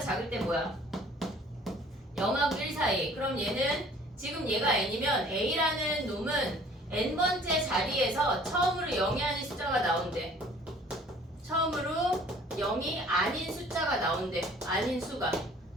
작을 때 뭐야? 0하고 1 사이. 그럼 얘는 지금 얘가 n이면 A라는 놈은 n번째 자리에서 처음으로 0이 아닌 숫자가 나온대. 처음으로 0이 아닌 숫자가 나온대. 아닌 수가.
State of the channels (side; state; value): both; normal; correlation 0.53